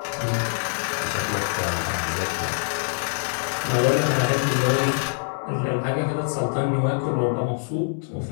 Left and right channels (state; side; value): silent; right; digital silence